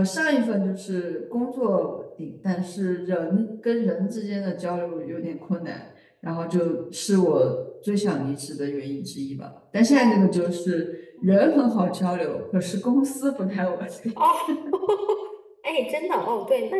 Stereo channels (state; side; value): identical; both; correlation 1.00